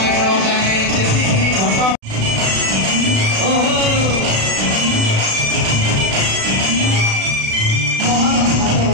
जाने जेतिकी घट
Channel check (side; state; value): left; late; 36 ms